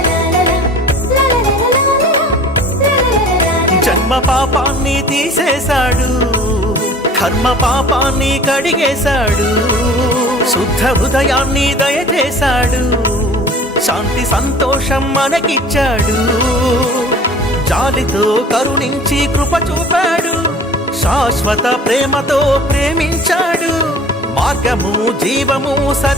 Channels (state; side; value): normal; both; correlation 0.45